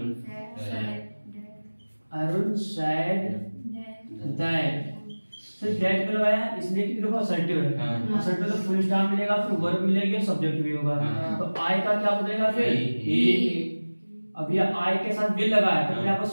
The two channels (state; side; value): inverted; both; correlation -1.00